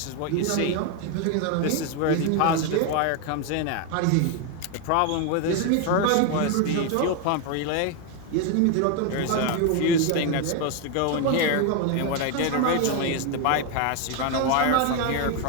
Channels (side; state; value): both; different; correlation 0.01